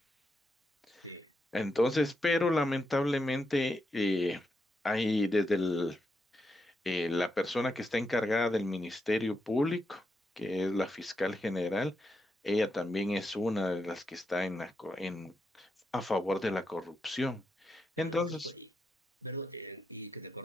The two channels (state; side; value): normal; both; correlation 0.84